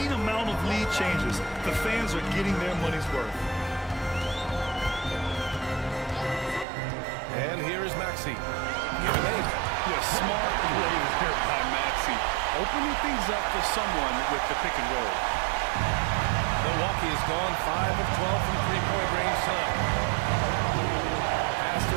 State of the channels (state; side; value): drops out; left; at 6.7 s